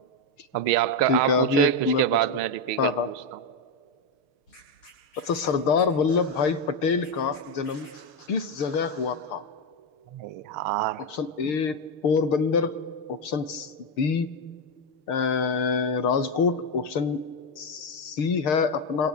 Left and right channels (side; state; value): right; late; 6.6 ms